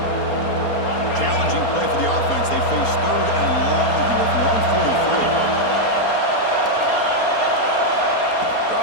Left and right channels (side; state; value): right; late; 4.3 ms